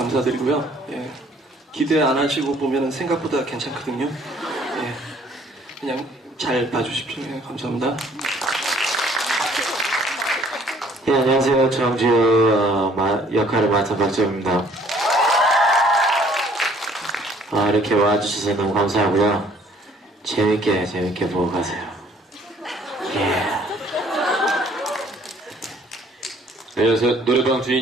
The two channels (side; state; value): both; normal; correlation 0.59